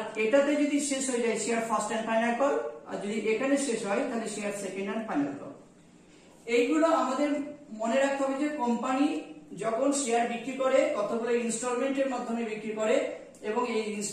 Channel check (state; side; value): identical; both; correlation 1.00